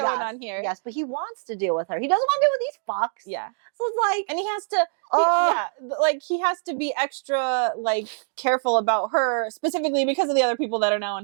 on here. Yes, but he wants to deal with her. He doesn't want to deal with these fucks. Yeah. So it's like... And he has to... he has to be extra, careful about her, specifically because of the other people that are now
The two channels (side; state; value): left; silent; digital silence